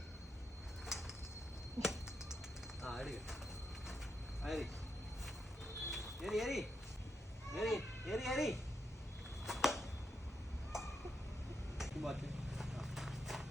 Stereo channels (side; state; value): both; normal; correlation 0.82